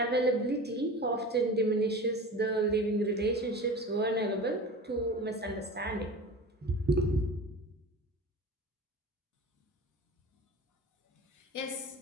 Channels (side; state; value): both; normal; correlation 0.35